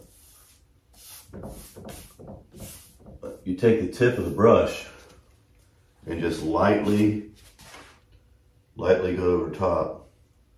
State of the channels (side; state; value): both; identical; correlation 1.00